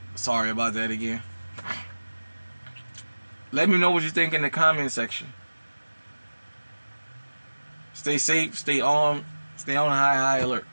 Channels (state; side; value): inverted; both; correlation -1.00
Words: Sorry about that again. Let me know what you think in the comment section. Stay safe, stay on high alert.